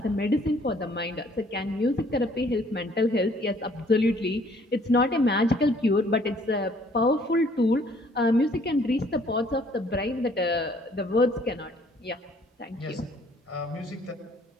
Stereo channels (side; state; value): both; normal; correlation 0.60